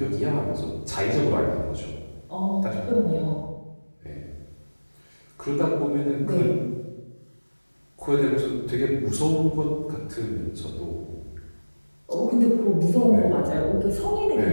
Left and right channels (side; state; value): both; inverted; correlation -1.00